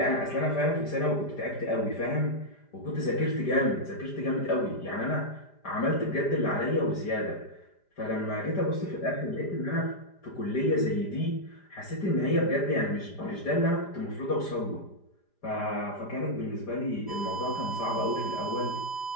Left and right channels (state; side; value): late; right; 5.0 ms